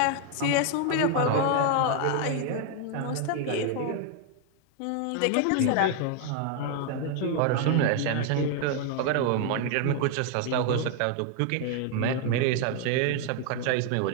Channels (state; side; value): different; both; correlation 0.00